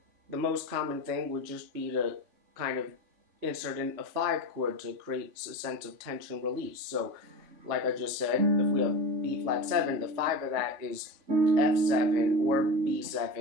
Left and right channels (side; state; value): left; late; 3.5 ms